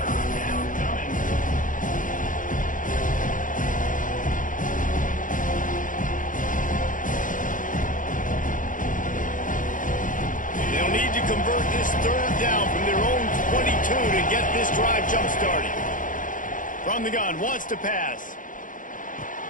Convert this 3rd down from their own 22 to get this drive jump-started. From the gun, wants to pass.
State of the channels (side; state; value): right; late; 0.38 ms